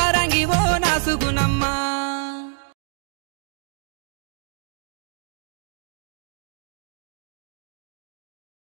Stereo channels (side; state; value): left; silent; digital silence